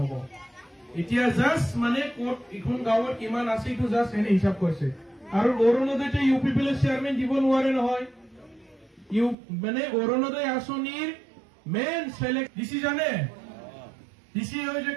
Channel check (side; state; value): left; drops out; at 9.3 s